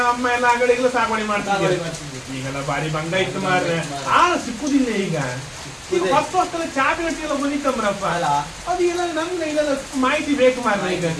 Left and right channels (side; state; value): both; identical; correlation 1.00